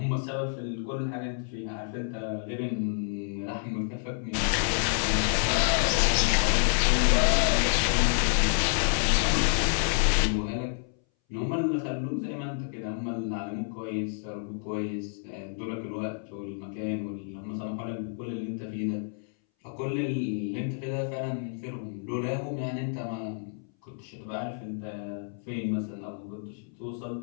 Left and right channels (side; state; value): right; silent; 59 dB below the other